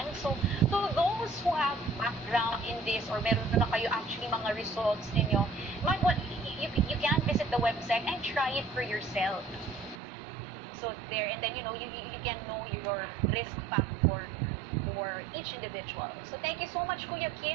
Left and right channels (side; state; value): left; drops out; at 10.0 s